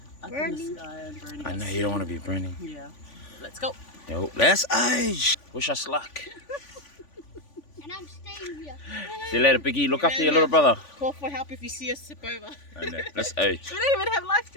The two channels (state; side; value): late; right; 3.5 ms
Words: up in the sky and burning. I know us. you don't want to be burning. Yeah, let's go. Yo, let's age. Wish us luck. And I'm staying here. See you later, Biggie. Look after your little brother. Call for help if you see us tip over. I know. Let's age. We don't even have life